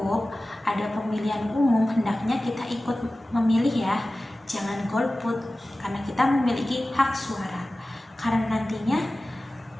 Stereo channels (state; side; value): normal; both; correlation 0.96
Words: ada pemilihan umum, hendaknya kita ikut memilih ya. Jangan golput, karena kita memiliki hak suara. Karena nantinya